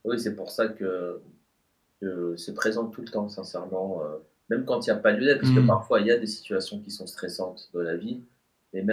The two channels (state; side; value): identical; both; correlation 1.00